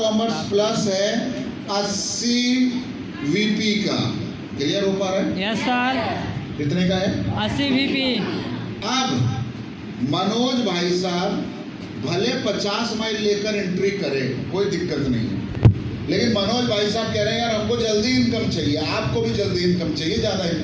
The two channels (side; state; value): both; identical; correlation 1.00